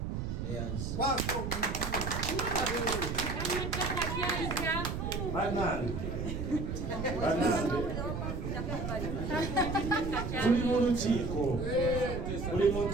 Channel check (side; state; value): right; noise; rumble, 3 dB below the sound